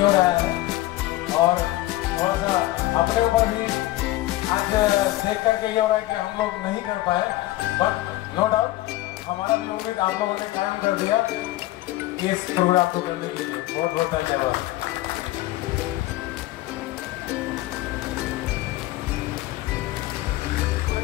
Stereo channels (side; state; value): right; quieter; 17.1 dB